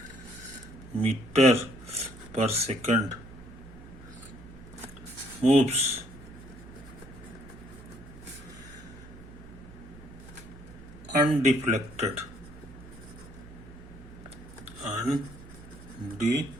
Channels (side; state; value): right; noise; hum, 18 dB below the sound